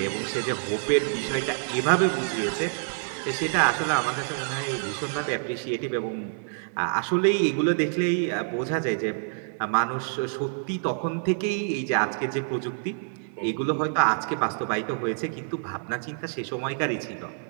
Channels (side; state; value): left; silent; 60 dB below the other